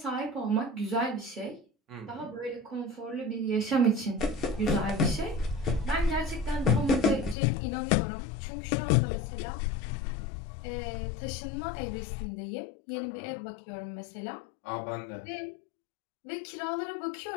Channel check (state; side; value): drops out; right; at 7.4 s